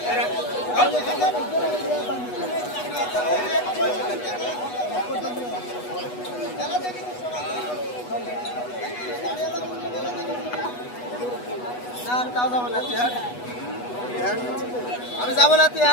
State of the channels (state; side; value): late; right; 8.2 ms